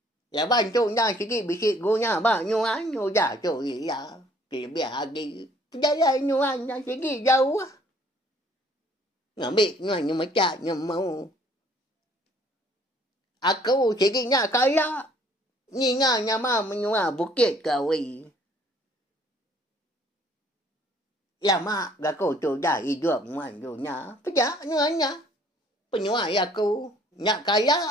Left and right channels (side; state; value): both; normal; correlation 0.59